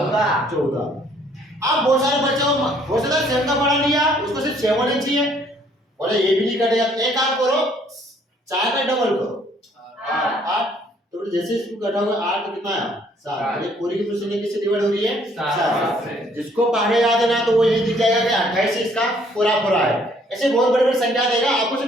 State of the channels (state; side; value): normal; both; correlation 0.63